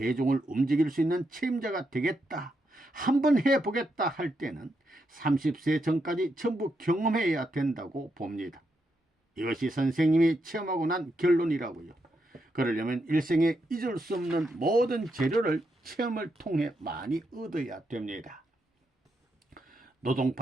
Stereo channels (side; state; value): both; normal; correlation 0.82